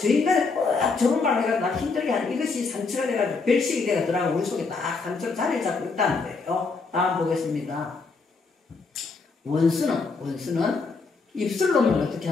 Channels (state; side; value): quieter; right; 4.3 dB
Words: 저 인간이 꼭 저런 말을 해가지고 나 힘들게 하는 이것이 상처가 돼가지고 별식이 돼가지고 우리 속에 딱 상처로 자리를 잡고 있다는 거예요. 다음 보겠습니다. 원수는 입술로는 어떻게